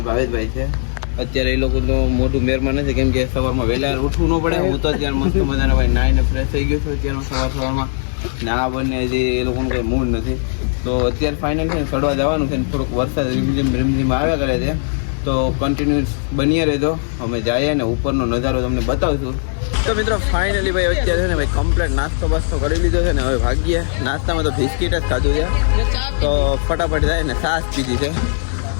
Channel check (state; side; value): silent; right; digital silence